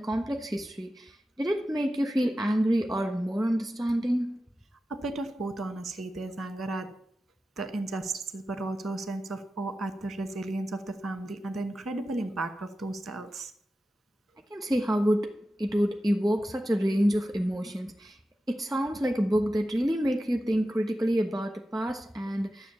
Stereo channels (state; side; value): normal; both; correlation 0.93